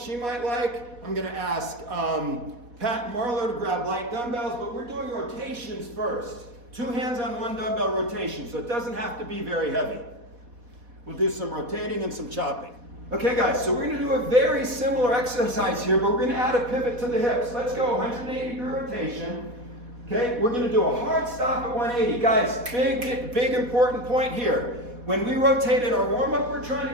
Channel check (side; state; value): left; late; 4.1 ms